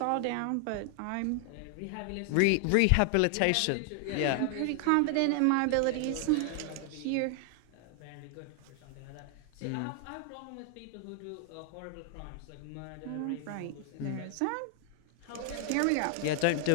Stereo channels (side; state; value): both; different; correlation 0.00